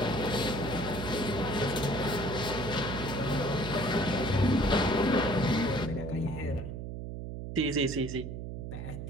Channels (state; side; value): noise; right; hum, 7 dB below the sound